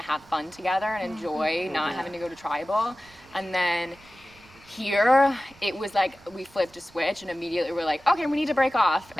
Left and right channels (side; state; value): right; noise; rumble, 27 dB below the sound